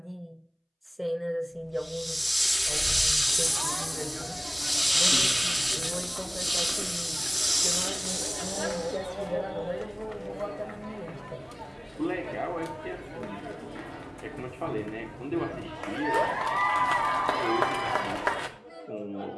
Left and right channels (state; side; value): identical; both; correlation 1.00